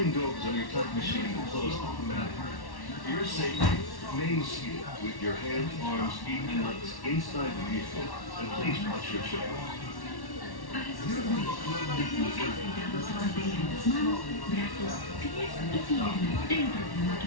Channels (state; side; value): late; right; 1.1 ms